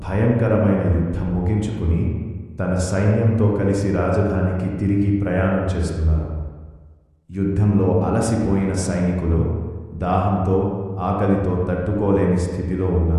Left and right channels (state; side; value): identical; both; correlation 1.00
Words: భయంకరమైన యుద్ధం ముగించుకుని తన సైన్యంతో కలిసి రాజధానికి తిరిగి ప్రయాణం చేస్తున్నారు. యుద్ధంలో అలసిపోయిన సైనికులు దాహంతో ఆకలితో తట్టుకోలేని స్థితిలో